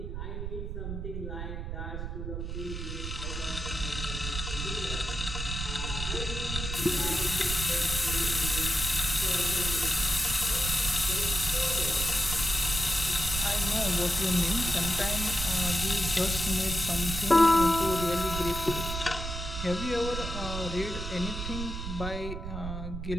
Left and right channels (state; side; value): noise; right; rumble, 5 dB below the sound